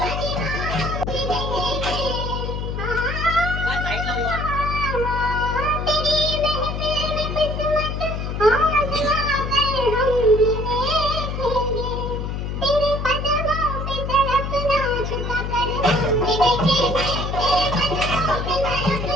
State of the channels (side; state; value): left; noise; hum, 3 dB below the sound